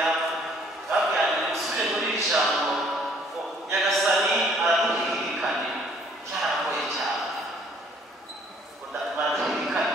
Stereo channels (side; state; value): both; normal; correlation 0.60